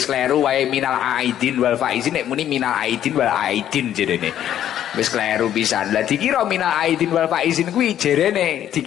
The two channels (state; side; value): quieter; right; 11.0 dB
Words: kleru wae minal aidin wal faizin, nek muni minal aidin wal aidin jerene. Wis kleru pisan. Lah dikira minal aidin wal faizin kuwi jerene